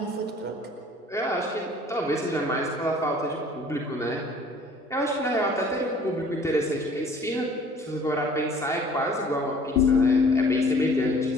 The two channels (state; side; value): normal; both; correlation 0.52